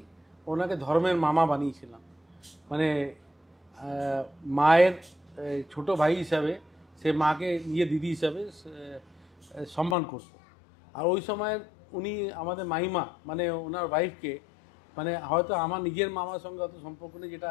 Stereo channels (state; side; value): drops out; right; at 10.0 s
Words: ওনাকে ধর্মের মামা বানিয়েছিলাম। মানে মায়ের ছোট ভাই হিসাবে সে মাকে নিজে দিদি হিসাবে সম্মান করতো। আর ওই সময় উনি আমাদের মাইমা মানে ওনার ওয়াইফকে, মানে হয়তো আমার নিজের মামার সঙ্গে অত সম্পর্ক নেই